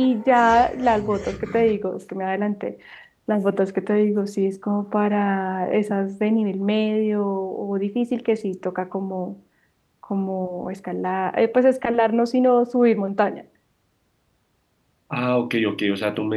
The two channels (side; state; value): both; identical; correlation 1.00